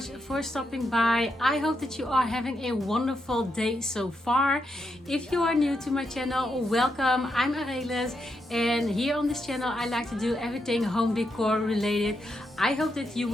for stopping by. I hope that you are having a wonderful day so far. If you are new to my channel, welcome. I'm Arelis, and here on this channel I like to do everything home decor related. I hope that you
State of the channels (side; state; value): both; normal; correlation 0.82